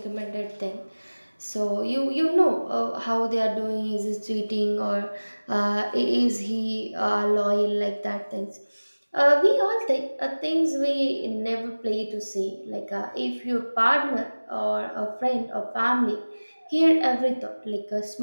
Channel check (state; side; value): inverted; both; correlation -1.00